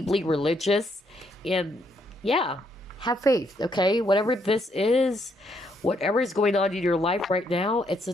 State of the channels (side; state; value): both; normal; correlation 0.74